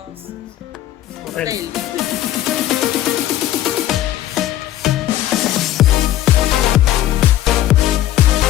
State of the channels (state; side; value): quieter; right; 13.1 dB